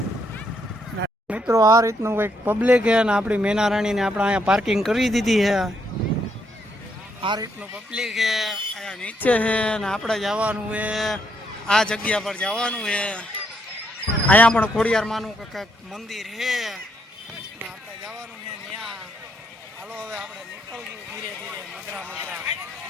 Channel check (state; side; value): normal; both; correlation 0.74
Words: મિત્રો આ રીતનું કંઈક પબ્લિક છે ને આપણી મેના રાણીને આપણે અહીંયા પાર્કિંગ કરી દીધી છે. આ રીતનું પબ્લિક છે અહીંયા નીચે છે ને આપણે જવાનું છે આ જગ્યા પર જવાનું છે. અહીંયા પણ ખોડિયારમાંનું કંઈક મંદિર છે ને આપણે જવાનું છે ત્યાં. હાલો હવે આપણે નીકળવું ધીરે ધીરે મધરા